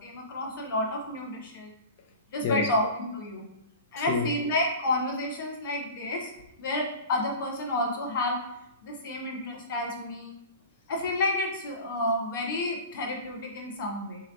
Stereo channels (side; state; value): both; inverted; correlation -0.35